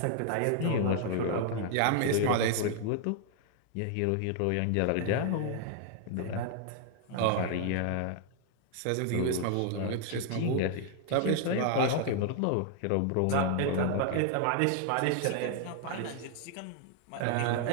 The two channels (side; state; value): both; different; correlation 0.00